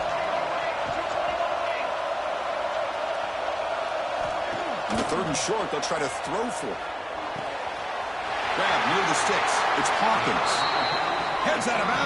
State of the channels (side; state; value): both; identical; correlation 1.00